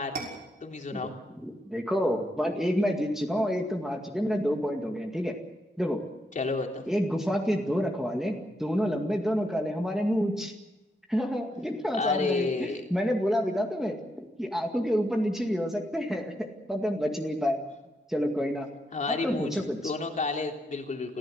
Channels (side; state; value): both; normal; correlation 0.81